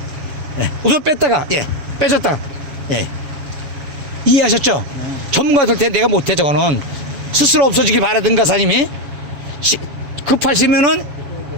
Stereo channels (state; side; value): late; left; 7.3 ms